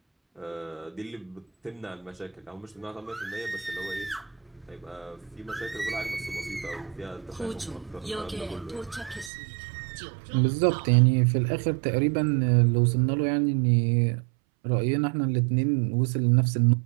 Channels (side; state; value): left; drops out; at 9.3 s